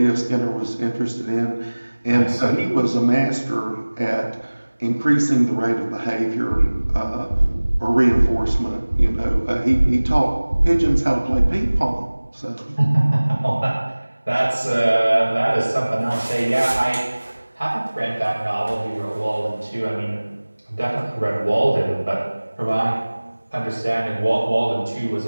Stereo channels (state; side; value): inverted; both; correlation -1.00